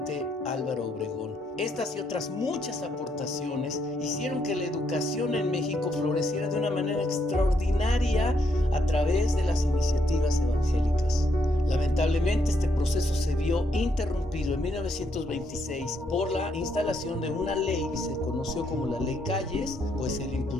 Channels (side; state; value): both; normal; correlation 0.75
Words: Álvaro Obregón. Estas y otras muchas aportaciones hicieron que la educación en México floreciera de una manera extraordinaria a través de las iniciativas evangélicas. Lamentablemente este proceso se vio interrumpido en 1926 por la instalación de una ley que se conoció como la Ley Calles, pues el